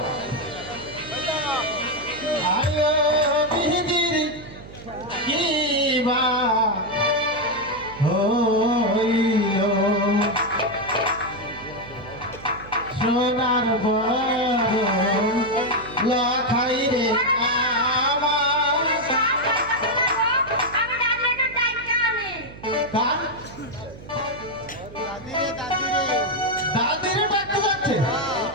আয়ো বিহিদির কিবা হইল সোনার বড় লাখাই রে আমার দাদিরে ডাকতে যাচ্ছে।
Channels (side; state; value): right; noise; hum, 17 dB below the sound